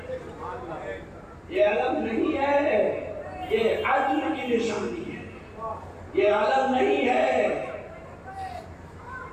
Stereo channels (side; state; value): both; identical; correlation 1.00